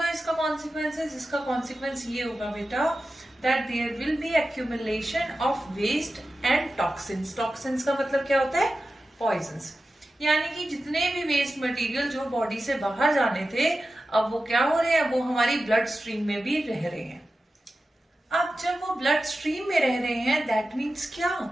इसका कॉन्सिक्वेंसेस? इसका कॉन्सिक्वेंस ये होगा बेटा that there will be accumulation of waste and toxins. Toxins का मतलब क्या होता है? पॉइजन्स. यानी कि जितने भी वेस्ट मटेरियल जो बॉडी से बाहर जाने थे, अब वो क्या हो रहे हैं? वो हमारी ब्लड स्ट्रीम में भी रह रहे हैं. अब जब वो ब्लड स्ट्रीम में रह रहे हैं, दैट मीन्स क्या?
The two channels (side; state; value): both; normal; correlation 0.93